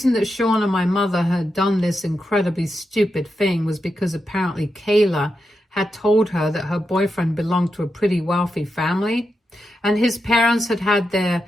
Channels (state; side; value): normal; both; correlation 0.87